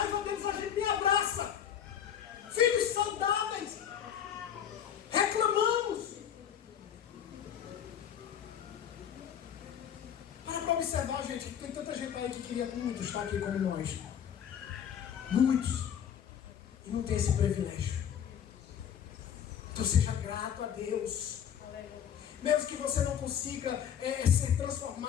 deles, a gente nem abraça. Filhos saudáveis. queria muito estar aqui como nós. Muitos. E não tem esse privilégio. Então seja grato a Deus. Mesmo que você não consiga ser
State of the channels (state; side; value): quieter; right; 9.0 dB